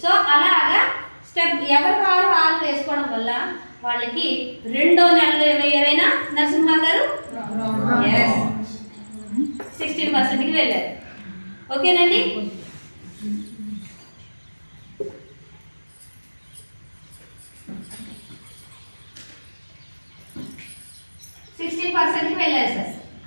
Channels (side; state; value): both; inverted; correlation -1.00